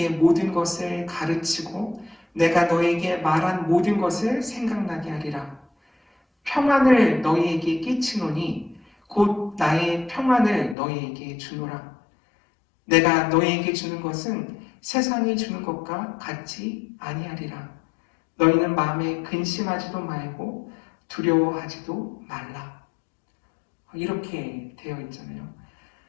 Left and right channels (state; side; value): drops out; right; at 10.8 s